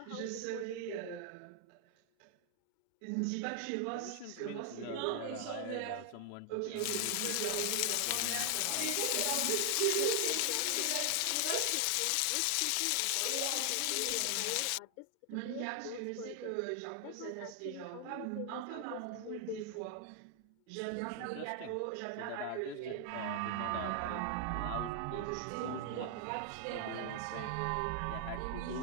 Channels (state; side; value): different; both; correlation 0.00